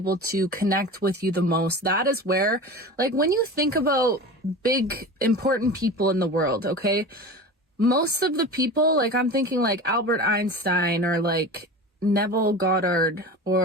to connect with you the most. That is where, like, when you think about big important people in the world, okay, most of the people, like, I'm thinking like Albert Einstein or like Neville Goddard,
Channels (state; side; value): normal; both; correlation 0.32